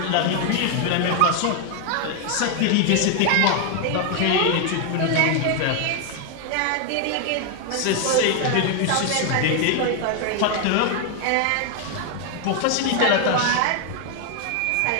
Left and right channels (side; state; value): both; different; correlation 0.00